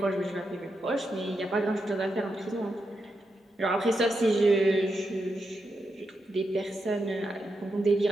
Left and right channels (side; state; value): both; normal; correlation 0.85